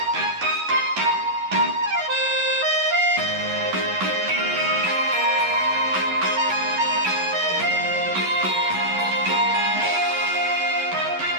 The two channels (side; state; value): left; late; 11 ms